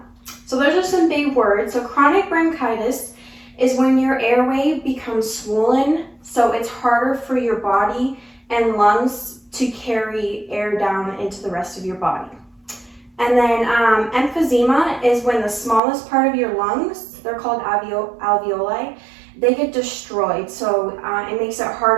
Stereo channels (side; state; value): left; drops out; at 15.8 s